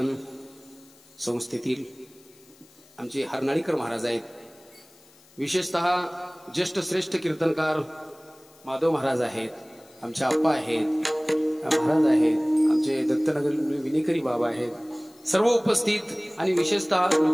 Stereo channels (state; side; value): noise; left; hiss, 27 dB below the sound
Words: संस्थेतील आमचे हरनाळीकर महाराज आहेत. विशेषतः ज्येष्ठ श्रेष्ठ कीर्तनकार माधव महाराज आहेत, आमचे आप्पा आहेत, महाराज आहेत, आमचे दत्तनगर विनेकरी बाबा आहेत, सर्व उपस्थित आणि विशेषतः